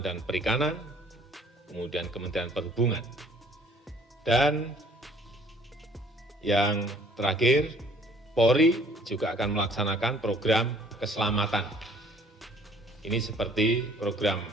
dan Perikanan, kemudian Kementerian Perhubungan. Dan yang terakhir, Polri juga akan melaksanakan program keselamatan. Ini seperti program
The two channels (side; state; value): both; normal; correlation 0.57